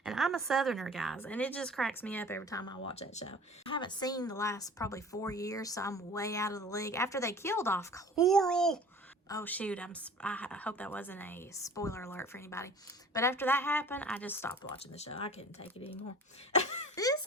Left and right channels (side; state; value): both; normal; correlation 0.44